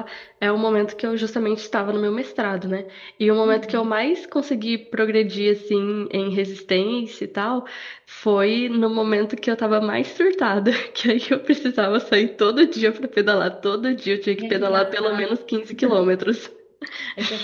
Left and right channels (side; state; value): both; identical; correlation 1.00